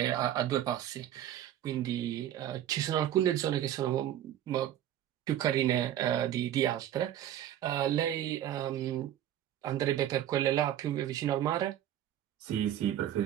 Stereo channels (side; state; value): left; quieter; 11.6 dB